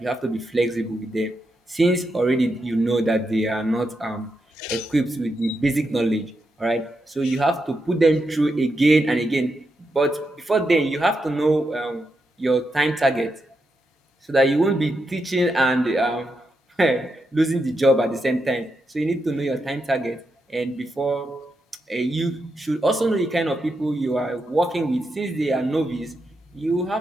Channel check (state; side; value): normal; both; correlation 0.84